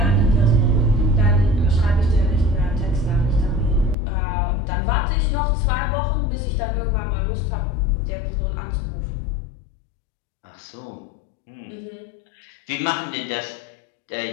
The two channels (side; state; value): right; drops out; at 4.0 s